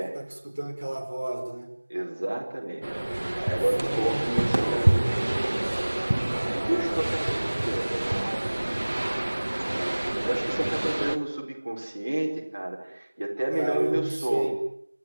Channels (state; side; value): inverted; both; correlation -1.00